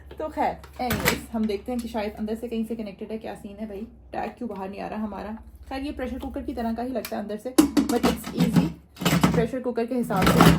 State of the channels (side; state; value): both; identical; correlation 1.00